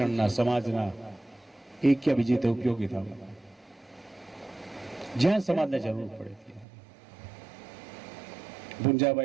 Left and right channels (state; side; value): drops out; left; at 6.7 s